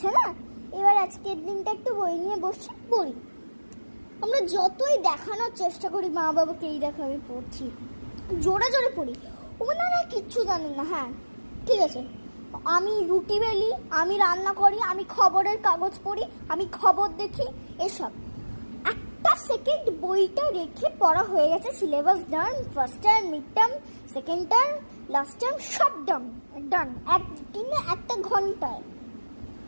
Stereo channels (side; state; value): both; inverted; correlation -1.00